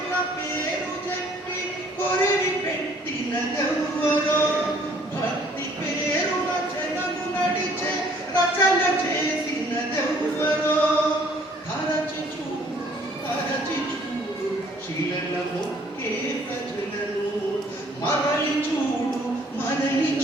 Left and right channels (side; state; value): both; normal; correlation 0.59